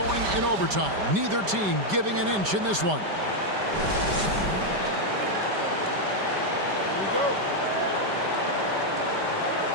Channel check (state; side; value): late; left; 5.1 ms